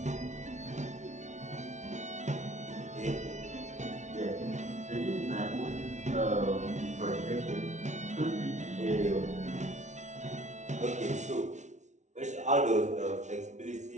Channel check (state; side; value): late; left; 0.34 ms